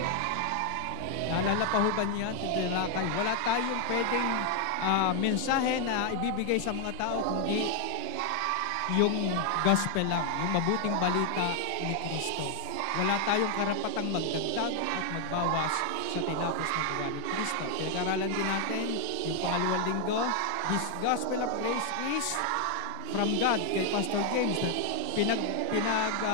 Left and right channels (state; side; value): different; both; correlation 0.00